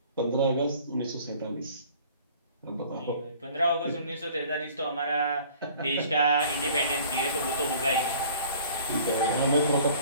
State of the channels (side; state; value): both; inverted; correlation -0.50